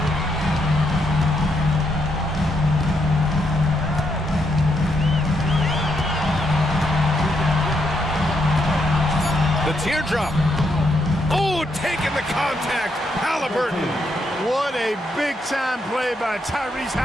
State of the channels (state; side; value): normal; both; correlation 0.78